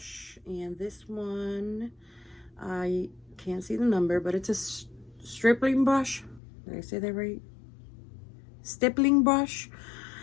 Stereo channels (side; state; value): right; drops out; at 6.4 s